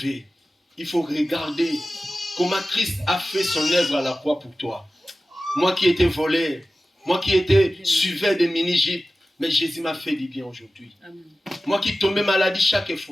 Il faut regarder comment Christ a fait son œuvre à la croix pour toi. Moi qui étais voleur, moi qui étais suiveur des mini-gypes, mais Jésus m'a fait du bien aujourd'hui. Amen. Moi qui tombais maladie chaque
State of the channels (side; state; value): both; normal; correlation 0.95